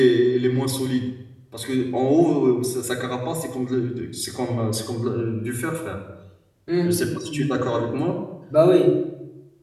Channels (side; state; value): both; identical; correlation 1.00